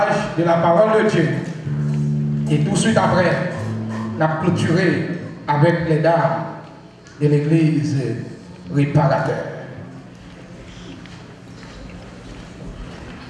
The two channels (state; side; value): identical; both; correlation 1.00